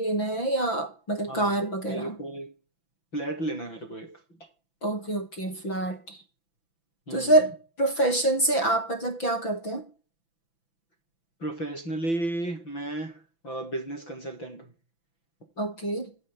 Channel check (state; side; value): late; right; 6.0 ms